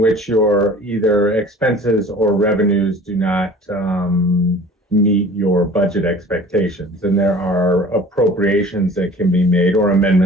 which your either expenses or revenues do not meet your budget expectations. And there are appropriations that can be made or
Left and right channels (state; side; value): normal; both; correlation 0.46